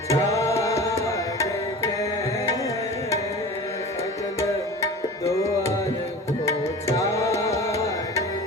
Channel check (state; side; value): normal; both; correlation 0.36